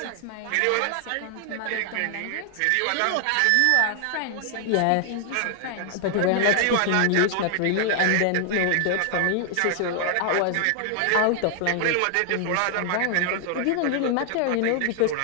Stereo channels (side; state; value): both; different; correlation 0.00